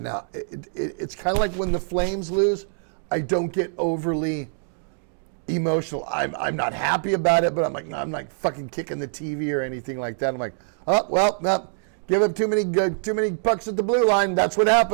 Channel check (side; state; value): left; silent; digital silence